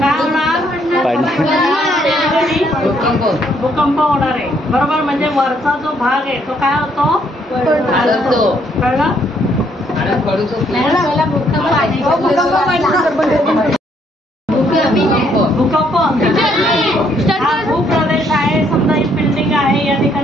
भूकंप होणार आहे बरोबर. म्हणजे वरचा जो भाग आहे तो काय होतो, कळलं. भूकंप हा भूप्रदेश आहे. समजा ही बिल्डिंग आहे, या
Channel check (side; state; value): both; normal; correlation 0.69